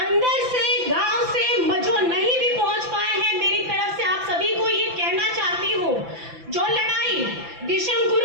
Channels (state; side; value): late; left; 5.9 ms